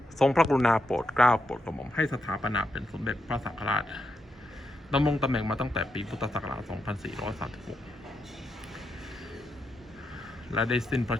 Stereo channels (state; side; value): normal; both; correlation 0.83